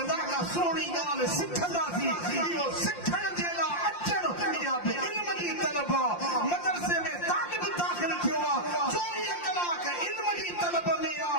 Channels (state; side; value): late; right; 5.7 ms